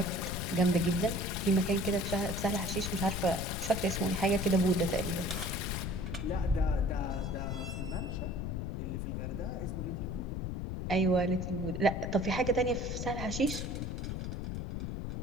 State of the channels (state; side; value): noise; left; rumble, 3 dB below the sound